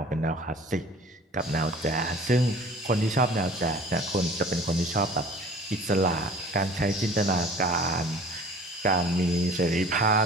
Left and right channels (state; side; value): normal; both; correlation 0.46